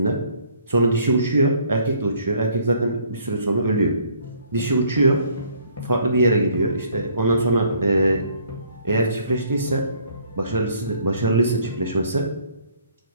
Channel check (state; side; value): inverted; both; correlation -0.61